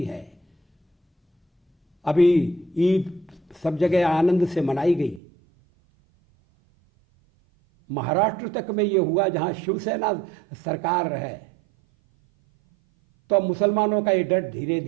है। अभी ईद सब जगह आनंद से मनाई गई। महाराष्ट्र तक में ये हुआ जहां शिवसेना सरकार है। तो अब मुसलमानों का ये डर धीरे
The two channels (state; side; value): drops out; left; at 5.2 s